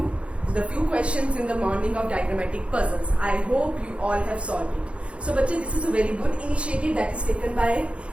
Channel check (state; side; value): late; left; 0.060 ms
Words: the few questions in the morning of diagrammatic puzzles. I hope you all have solved it. So बच्चे, this is a very good initiative that is taken by